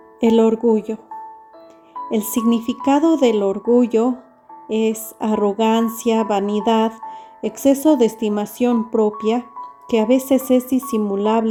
El orgullo. El significado del orgullo es arrogancia, vanidad, exceso de estimación propia, que a veces es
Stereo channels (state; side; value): identical; both; correlation 1.00